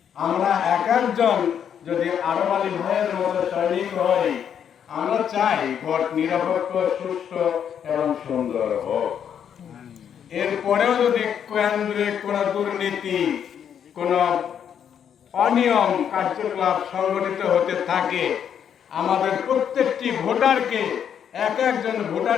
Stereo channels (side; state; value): right; quieter; 8.5 dB